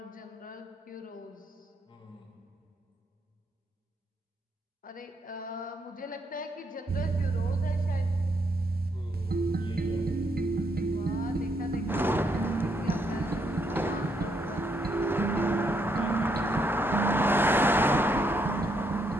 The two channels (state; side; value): normal; both; correlation 0.75